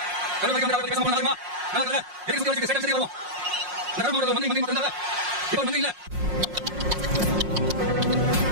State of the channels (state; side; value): late; left; 5.6 ms